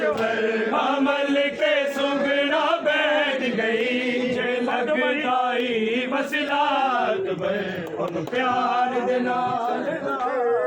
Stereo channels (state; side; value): identical; both; correlation 1.00